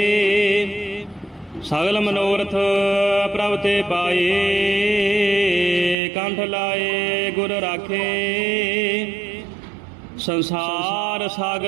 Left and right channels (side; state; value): left; drops out; at 6.0 s